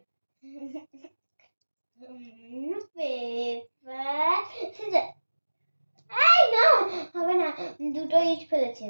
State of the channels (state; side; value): inverted; both; correlation -1.00